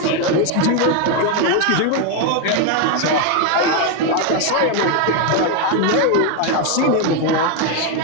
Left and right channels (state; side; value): different; both; correlation 0.01